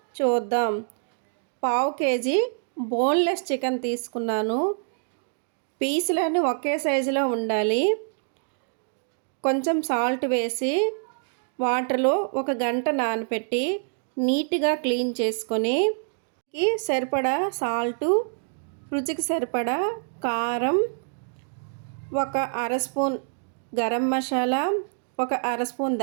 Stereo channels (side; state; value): left; silent; digital silence